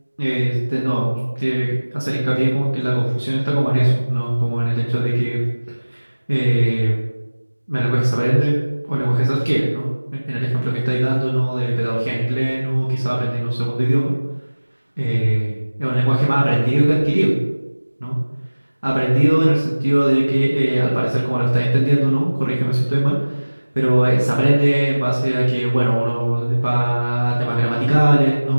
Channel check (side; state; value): both; inverted; correlation -1.00